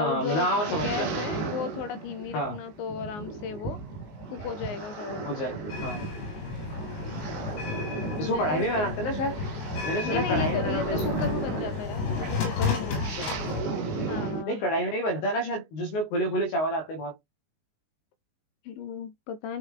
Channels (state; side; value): late; right; 19 ms